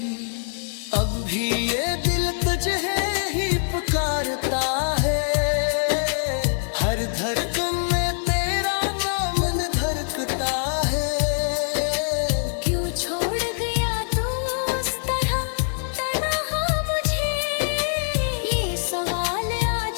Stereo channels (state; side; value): silent; right; digital silence